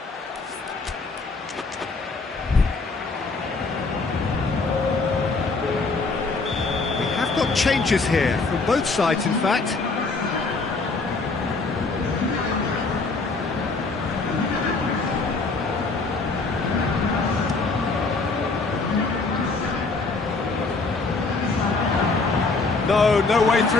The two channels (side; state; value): right; quieter; 3.9 dB